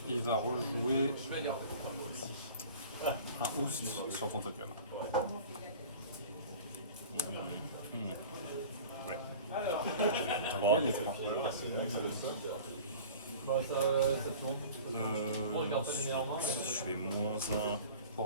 il va rejouer un Oust sur ton token. Ouais. Ok, les 3. Bon, ça tourne. Bon, je garde pas les meilleurs mains. Je fais -1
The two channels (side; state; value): both; inverted; correlation -0.41